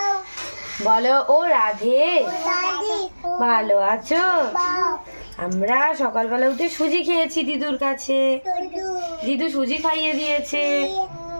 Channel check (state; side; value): inverted; both; correlation -1.00